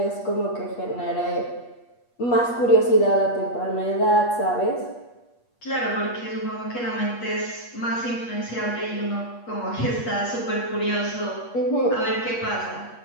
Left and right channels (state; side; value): late; right; 8.4 ms